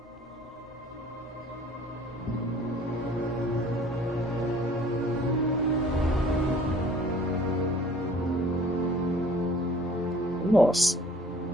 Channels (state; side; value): normal; both; correlation 0.52